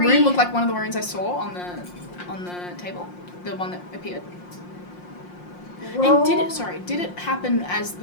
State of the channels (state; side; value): late; right; 5.6 ms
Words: look like one of the runes I saw on the table? The one that appeared. And did it happen as